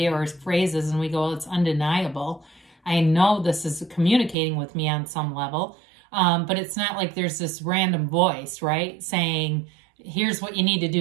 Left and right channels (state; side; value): drops out; left; at 4.4 s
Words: or phrases, and we go, well, it's undeniable. I know this is communicating with me on some level, but it's not like there's this random voice, right, saying, here's what you need to